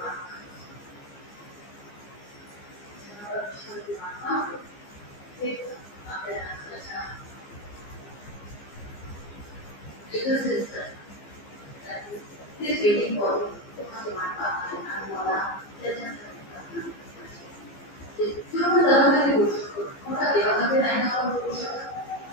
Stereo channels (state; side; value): late; right; 15 ms